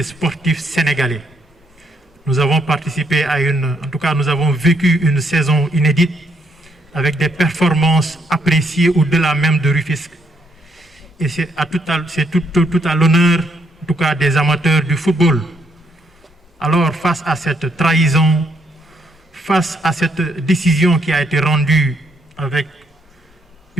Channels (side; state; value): both; normal; correlation 0.73